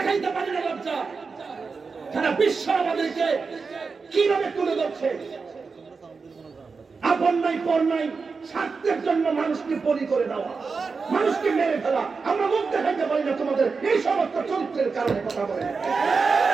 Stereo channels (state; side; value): quieter; left; 4.8 dB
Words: পারি না লজ্জা সারা বিশ্ব আমাদেরকে কিভাবে তুলে ধরছে আপন নাই পর নাই স্বার্থের জন্য মানুষকে বলি করে দেওয়া মানুষকে মেরে ফেলা আমরা মুখ দেখাইতে পারি না তোমাদের এই সমস্ত চরিত্রের কারণে কথা বলে